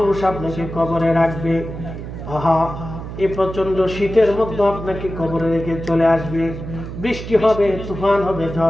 আপনাকে কবরে রাখবে, আহা এই প্রচন্ড শীতের মধ্যে আপনাকে কবরে রেখে চলে আসবে, বৃষ্টি হবে, তুফান হবে,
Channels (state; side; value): noise; right; hum, 9 dB below the sound